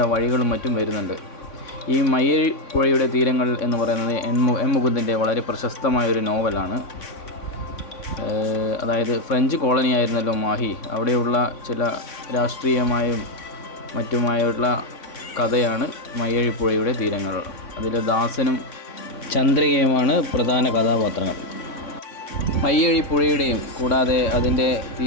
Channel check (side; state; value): right; late; 3.6 ms